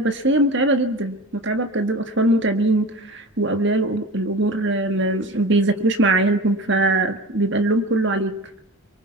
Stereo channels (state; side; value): normal; both; correlation 0.33